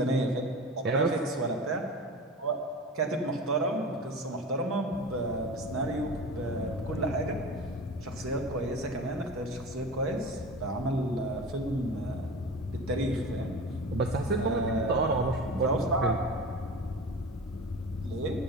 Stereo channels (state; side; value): normal; both; correlation 0.33